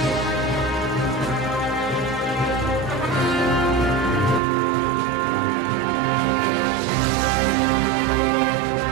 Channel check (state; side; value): drops out; left; at 4.4 s